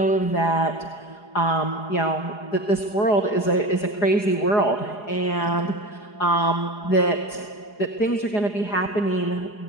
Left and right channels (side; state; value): right; late; 4.8 ms